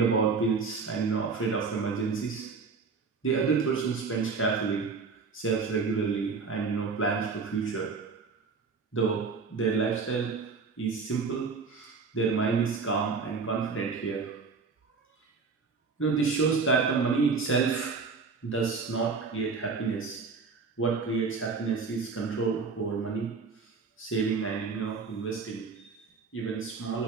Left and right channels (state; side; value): quieter; left; 4.8 dB